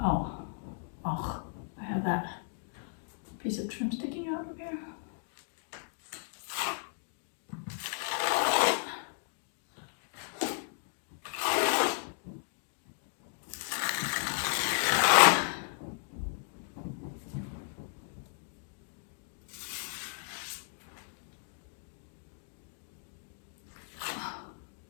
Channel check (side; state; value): right; silent; digital silence